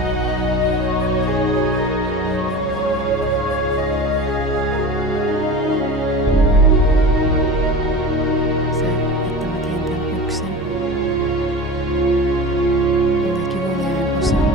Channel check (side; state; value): both; normal; correlation 0.33